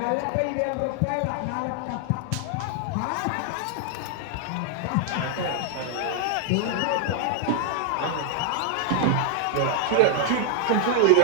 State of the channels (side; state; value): both; different; correlation 0.00